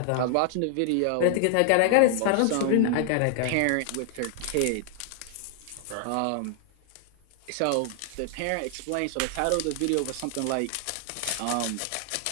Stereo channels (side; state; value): both; different; correlation 0.00